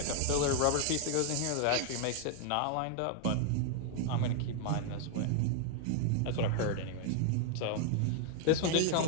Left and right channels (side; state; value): both; different; correlation 0.00